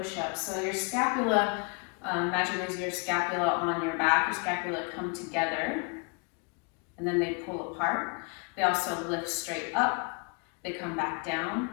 So your scapula, imagine there's your scapula on your back, your scapula come together, and then they pull apart. They also lift straight up, they come back down,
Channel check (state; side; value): quieter; right; 34.5 dB